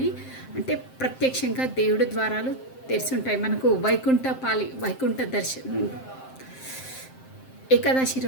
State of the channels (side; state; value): right; late; 7.6 ms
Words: అంటే ప్రత్యక్షంగా దేవుడి ద్వారాలు తెరిచి ఉంటాయి. మనకు వైకుంఠ దర్శనం ఏకాదశి